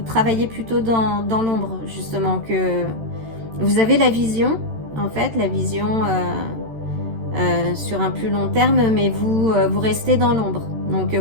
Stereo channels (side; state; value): left; late; 13 ms